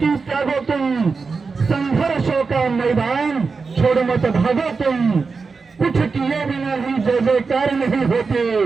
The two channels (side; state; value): left; quieter; 4.7 dB